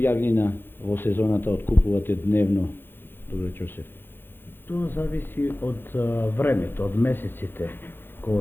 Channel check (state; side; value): late; right; 0.10 ms